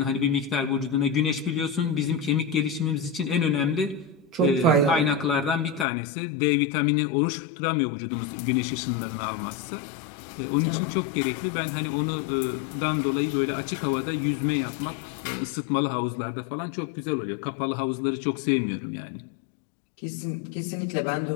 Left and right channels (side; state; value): right; drops out; at 5.9 s